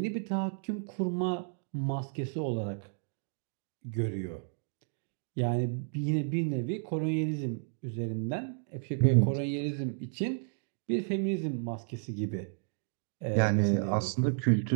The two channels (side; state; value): left; silent; digital silence